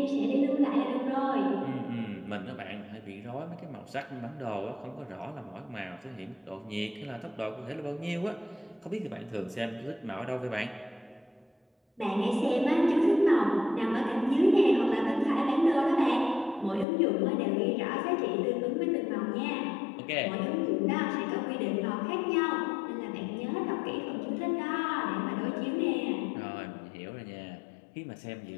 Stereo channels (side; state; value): right; drops out; at 16.9 s